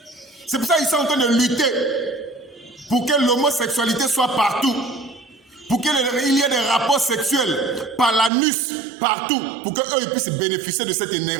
C'est pour ça qu'ils sont en train de lutter pour que l'homosexualité soit partout, pour qu'il y ait des rapports sexuels par l'anus partout, pour qu'eux ils puissent bénéficier de cette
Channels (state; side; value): drops out; left; at 8.3 s